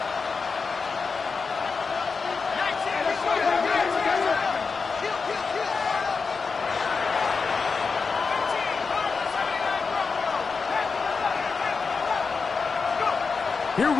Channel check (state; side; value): quieter; right; 4.9 dB